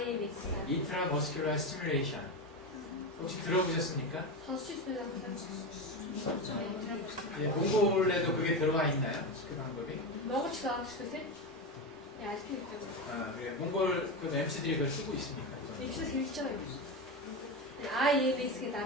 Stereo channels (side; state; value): both; normal; correlation 0.17